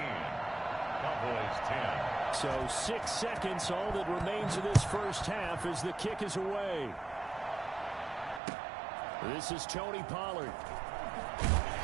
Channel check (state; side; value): drops out; left; at 8.4 s